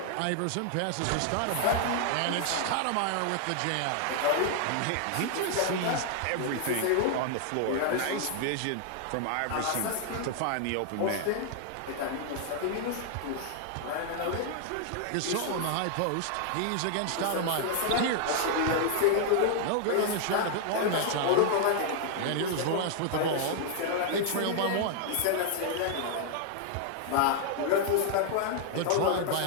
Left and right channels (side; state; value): both; different; correlation 0.00